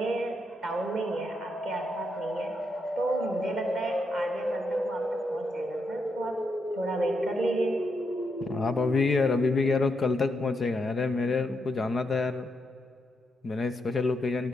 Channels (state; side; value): normal; both; correlation 0.81